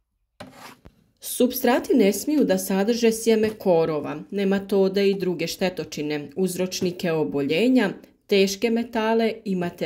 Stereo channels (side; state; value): both; identical; correlation 1.00